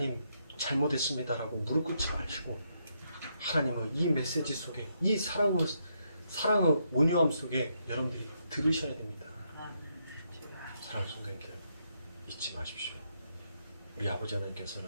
잘못했습니다라고 무릎 꿇지 마시고 하나님의 이 메시지 속에 이 사랑의 온유함 속에 여러분들이 들으셔야 됩니다. 사랑하는 성도님들 잊지 마십시오. 우리 아버지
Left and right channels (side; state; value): both; inverted; correlation -0.78